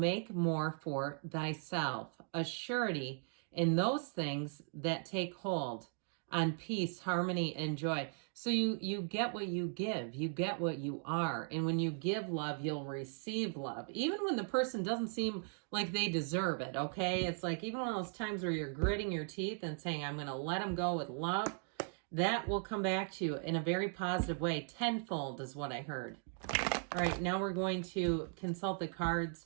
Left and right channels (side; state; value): left; silent; 52 dB below the other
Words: more for thyself. A surety in those things that take hold on peace, harmony, and joy. So you get what you give. You get what you are. And when you give love, you'll receive love. Even when the person doesn't seem like they deserve it, okay? It's like even one of those times where you're gritting your teeth and saying, I'm going to let them go with love. That will come back to you in a very positive way. Tenfold is what I heard. All right, now we're going to consult the cards